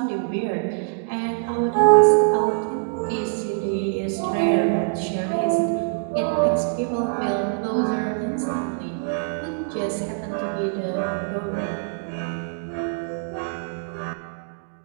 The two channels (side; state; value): left; silent; digital silence